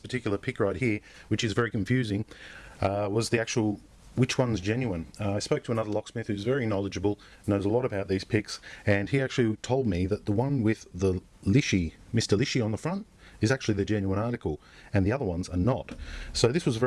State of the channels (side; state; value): both; identical; correlation 1.00